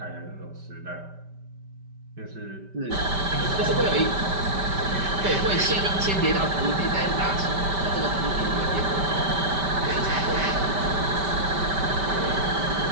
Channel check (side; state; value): left; late; 5.1 ms